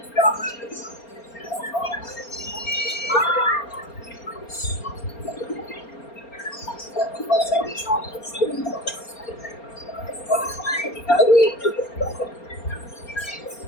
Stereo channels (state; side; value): late; right; 4.3 ms